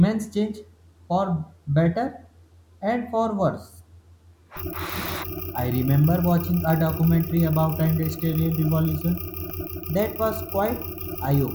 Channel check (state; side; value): identical; both; correlation 1.00